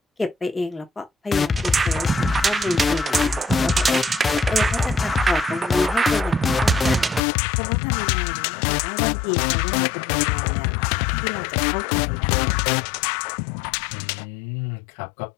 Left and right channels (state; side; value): drops out; right; at 7.2 s